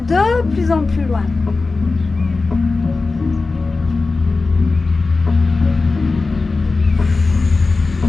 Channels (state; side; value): quieter; right; 3.8 dB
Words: de plus en plus loin.